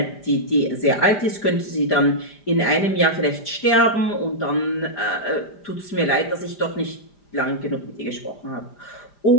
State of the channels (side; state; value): right; late; 5.0 ms